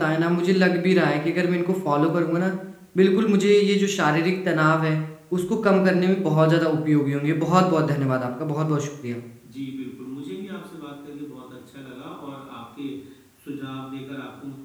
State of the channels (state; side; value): identical; both; correlation 1.00